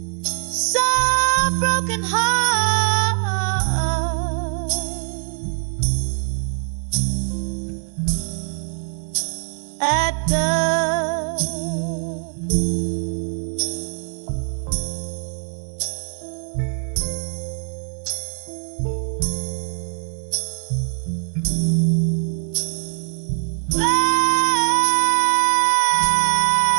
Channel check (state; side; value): silent; left; 56 dB below the other